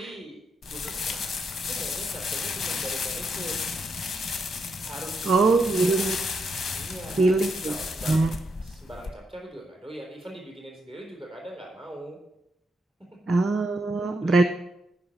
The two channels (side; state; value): both; normal; correlation 0.80